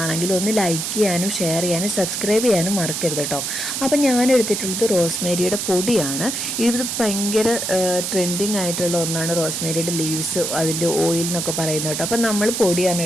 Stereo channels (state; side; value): noise; right; hiss, 3 dB below the sound